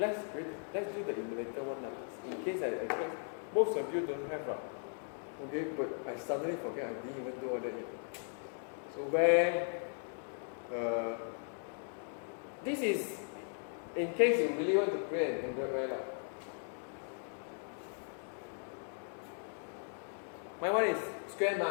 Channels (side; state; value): right; silent; 53 dB below the other